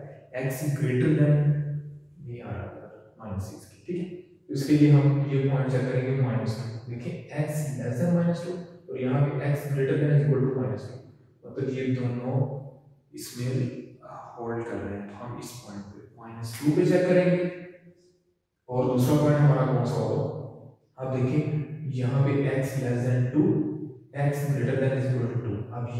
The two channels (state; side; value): identical; both; correlation 1.00